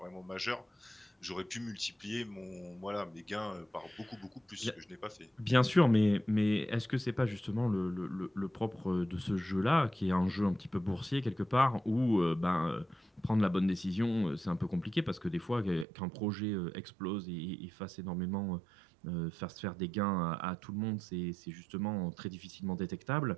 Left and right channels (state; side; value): drops out; left; at 15.9 s